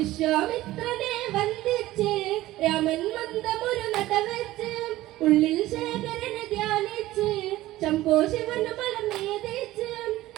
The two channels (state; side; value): quieter; left; 16.3 dB